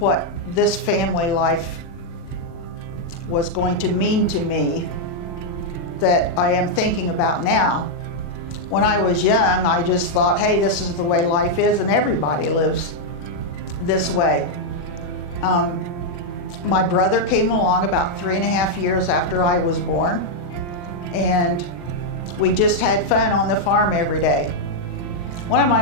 this family life was going to mean to me that I am thinking about now. When I was young, I just thought, hey, this is the way life is, and everybody lives this way. My brother came along about 3.5 years after I was born, and we just had fun on the farm every day. One of my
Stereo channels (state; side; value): late; right; 40 ms